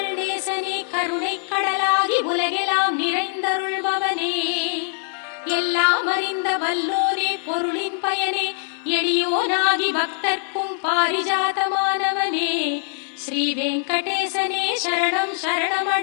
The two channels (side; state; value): right; silent; digital silence